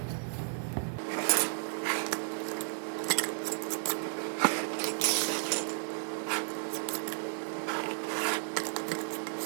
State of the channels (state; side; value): silent; left; digital silence